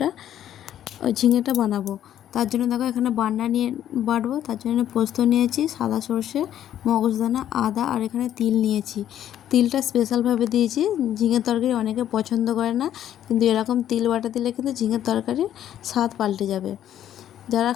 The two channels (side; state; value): right; quieter; 11.1 dB